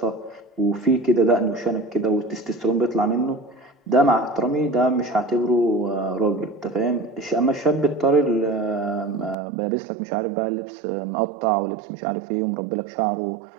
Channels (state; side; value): drops out; left; at 9.3 s